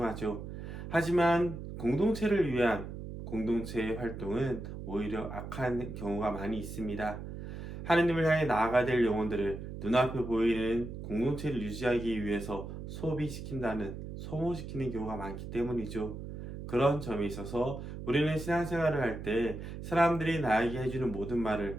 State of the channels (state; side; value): noise; right; hum, 9 dB below the sound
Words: 하지만 공동체를 위한 공동체의 활동은 오히려 악한 경우가 많이 있습니다. 하느님을 향해 나아가야 될 영혼들을 눈앞에 보이는 공동체를 유지하기 위해서 소모시키는 경우가 많기 때문이죠. 그런 점에 있어서 우리는 신앙생활을 할 때 사람들이 나에게 해주는 모든